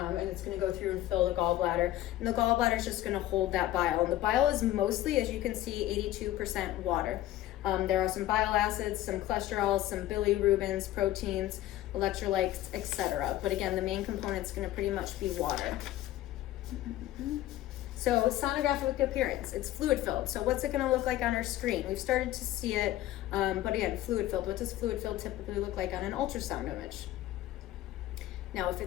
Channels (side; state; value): right; quieter; 14.3 dB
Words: it's going to go through and fill the gallbladder. And the gallbladder is just going to hold that bile. And the bile is mostly, as you can see, 82% water. There are some bile acids, some cholesterols, some bilirubins, proteins, electrolytes, etc. But again, the main component is going to pretty much be water. So sonographic appearance, it's fluid filled. So what's it going to look like on our screen? We've started to see it, but again, fluid filled. What does fluid filled typically look like on an ultrasound image? Now, if